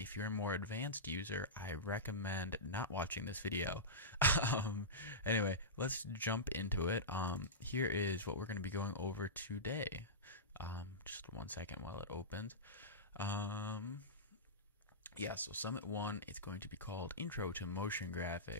you're a more advanced user, I recommend not watching this video. Anyway, let's jump into it. Here is what we're going to be going over today. Just 1 second while it opens. Yeah, so Summit 1, it's going to be called Intro to Motion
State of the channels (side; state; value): both; normal; correlation -0.16